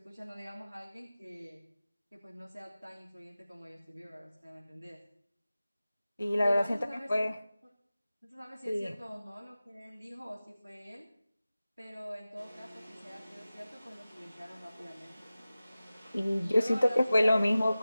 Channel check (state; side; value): inverted; both; correlation -0.96